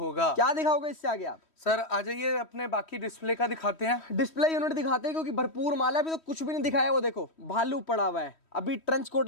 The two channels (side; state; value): right; late; 3.1 ms